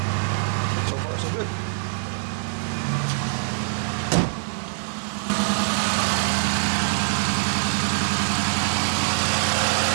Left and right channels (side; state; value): left; silent; digital silence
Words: So far, so good.